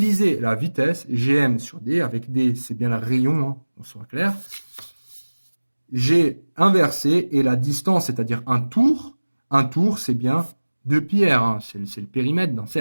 la vitesse, GM sur D, avec D, c'est bien le rayon, hein, on soit clair. J'ai inversé, et la distance, c'est-à-dire un tour, c'est bien 2pi r, hein, c'est le périmètre d'un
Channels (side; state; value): both; inverted; correlation -1.00